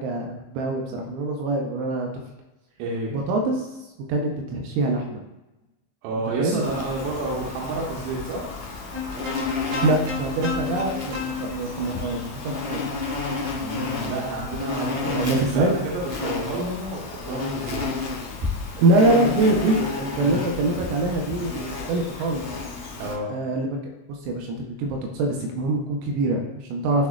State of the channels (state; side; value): late; left; 22 ms